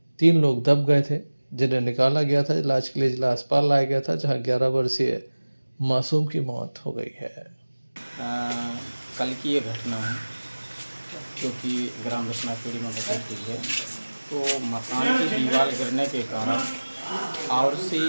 3 लोग दब गए थे, जिन्हें निकाला गया था, इलाज के लिए जिला अस्पताल लाया गया था, जहां 11 वर्षीय मासूम की मौत हो गई है। कल की ये घटना है क्योंकि ग्राम रचनाखेड़ी में बची हुई है। तो मकान की दीवार गिरने के कारण आवसी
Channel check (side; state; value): both; inverted; correlation -1.00